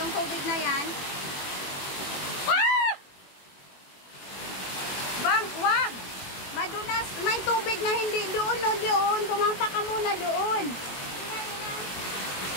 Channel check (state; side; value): late; right; 21 ms